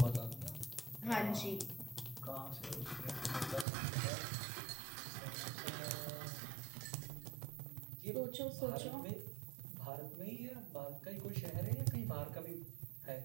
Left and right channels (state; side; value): drops out; left; at 3.7 s